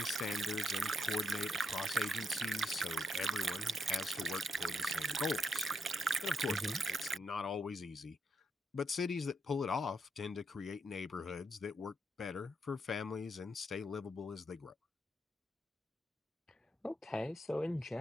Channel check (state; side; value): normal; both; correlation 0.79